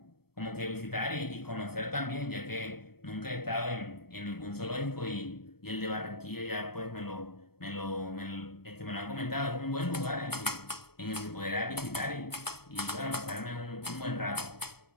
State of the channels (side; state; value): right; late; 0.96 ms